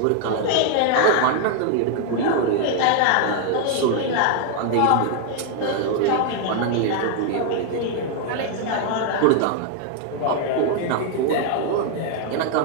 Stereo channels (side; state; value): both; different; correlation 0.00